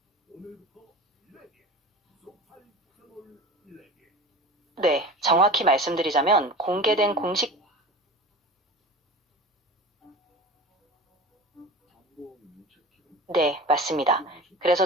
네, 정확히 말씀드리자면 공개된 공식 네, 맞습니다. 그래서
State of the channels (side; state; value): both; normal; correlation 0.34